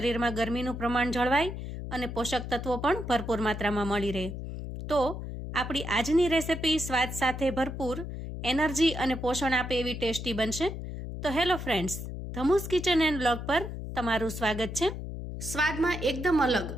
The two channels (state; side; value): noise; left; hum, 7 dB below the sound